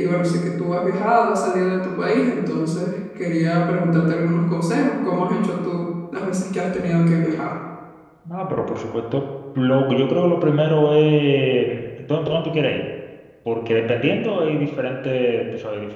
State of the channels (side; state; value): both; identical; correlation 1.00